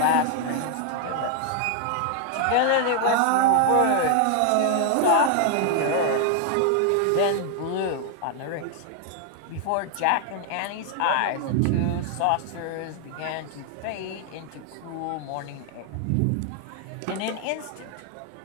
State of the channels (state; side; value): different; both; correlation 0.00